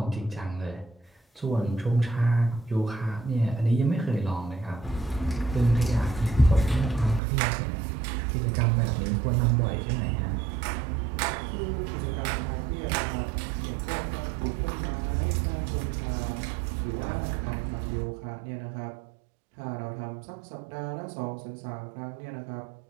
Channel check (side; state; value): left; drops out; at 7.2 s